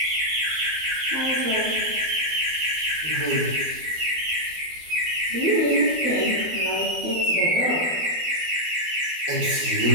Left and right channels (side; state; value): left; late; 12 ms